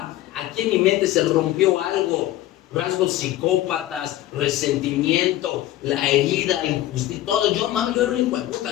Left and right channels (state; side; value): quieter; right; 14.6 dB